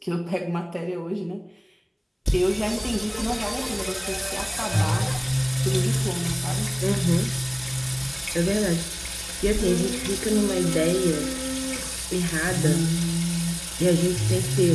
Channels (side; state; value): both; identical; correlation 1.00